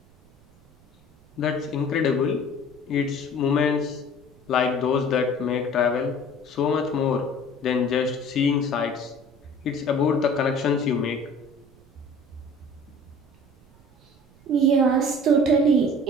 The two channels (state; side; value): noise; right; rumble, 29 dB below the sound